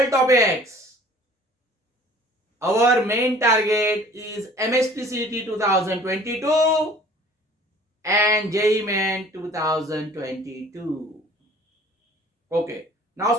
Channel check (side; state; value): both; normal; correlation 0.50